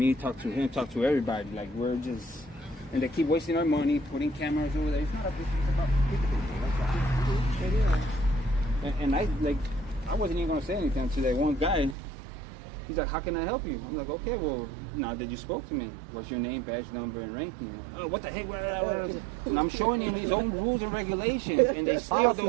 talk to him, talk to everybody. Like we're just, and they keep wasting our money, putting cameras over there. It's not a business, it's about people. And I wasn't even gonna say anything to that one guy. He's like, "How can I help you?" I'm like, "Okay, well, now that you spoke to me, what's your name, badge number, and ranking?" Oh, what the heck? And I'm showing him his own rules and regulations, and they still Policy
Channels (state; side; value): drops out; left; at 12.0 s